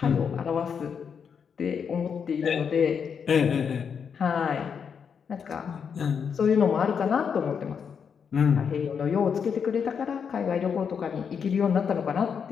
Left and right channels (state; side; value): quieter; right; 6.8 dB